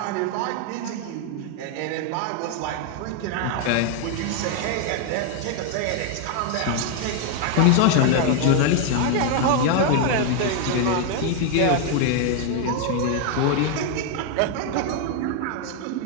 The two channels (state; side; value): different; both; correlation 0.01